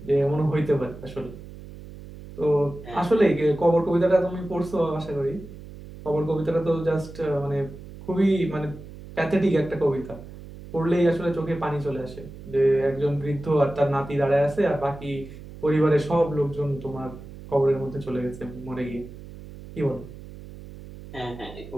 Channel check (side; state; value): right; noise; hum, 15 dB below the sound